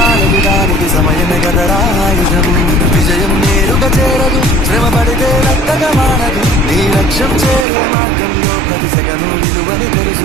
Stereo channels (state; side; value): drops out; left; at 7.7 s